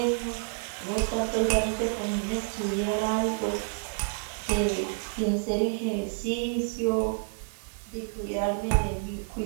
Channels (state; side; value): silent; left; 59 dB below the other